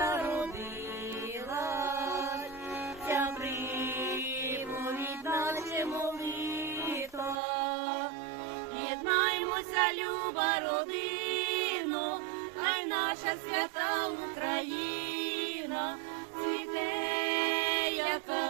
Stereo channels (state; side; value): drops out; left; at 7.4 s